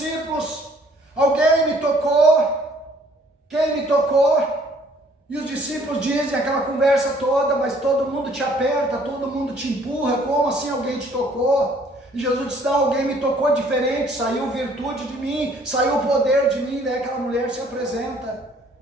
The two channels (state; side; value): normal; both; correlation 0.60